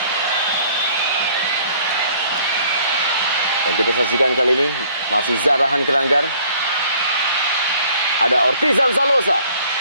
Dan kita saksikan kali ini masih Zarahan Keranggar. Ada Ortizan Salosa.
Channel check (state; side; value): inverted; both; correlation -0.57